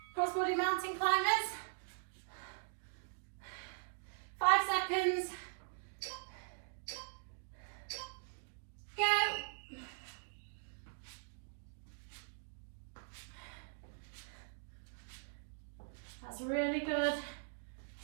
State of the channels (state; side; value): silent; left; digital silence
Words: Cross-body mountain climbers. 5 seconds. Go. That's really good.